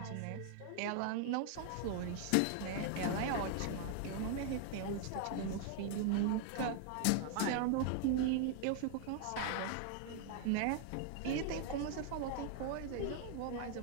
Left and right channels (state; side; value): different; both; correlation 0.00